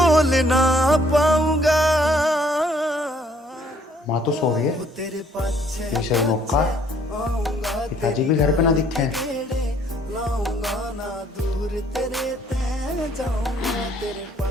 ना पाऊंगा। माँ तो सो रही है, ये सही मौका, पिताजी भी घर पे ना दिखे।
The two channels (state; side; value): normal; both; correlation 0.63